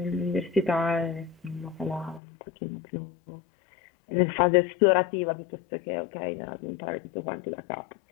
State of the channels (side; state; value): right; drops out; at 2.2 s